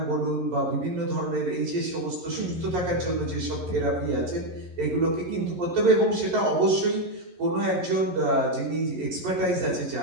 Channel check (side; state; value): left; late; 11 ms